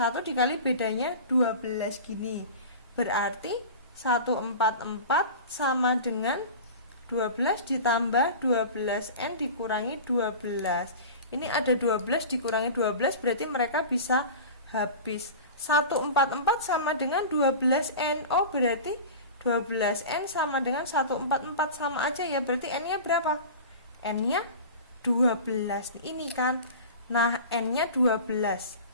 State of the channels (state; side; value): inverted; both; correlation -0.34